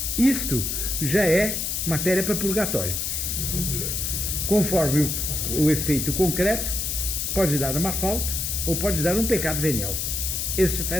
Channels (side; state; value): left; noise; hiss, 1 dB below the sound